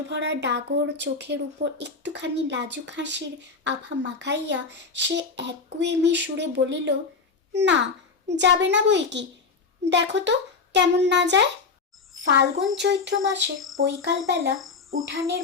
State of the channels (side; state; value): right; quieter; 4.7 dB